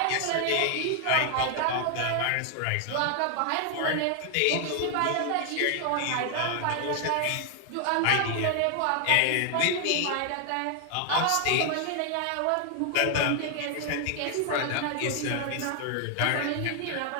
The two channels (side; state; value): both; different; correlation 0.00